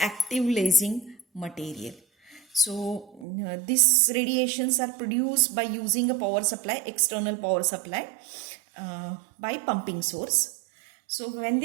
active lasing material. So these radiations are produced by using a power supply, external power supply, by pumping source. So when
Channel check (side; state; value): left; drops out; at 3.2 s